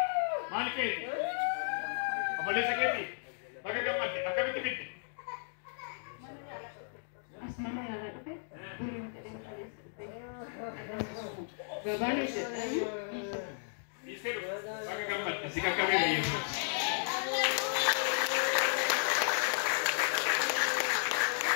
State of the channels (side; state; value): right; silent; digital silence